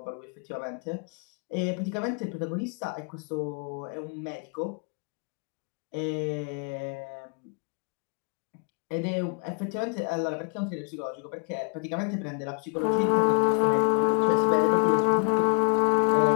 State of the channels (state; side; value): quieter; right; 38.6 dB